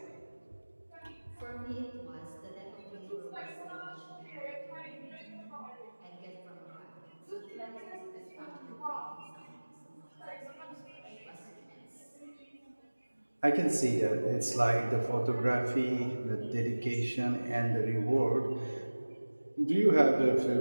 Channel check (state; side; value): inverted; both; correlation -1.00